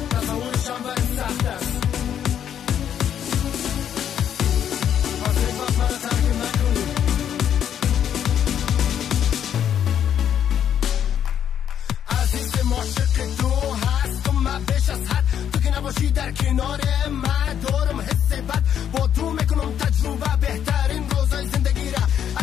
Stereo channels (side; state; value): right; quieter; 9.4 dB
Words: تصورشم برای سخت است، پس یک وقت برای ترک نکنی. عزیز معاشق تو هست و من بیش از حد، تو که نباشی در کنار من دارم حس بد، با تو میکنم تجربه بهترین روزای زندگی را.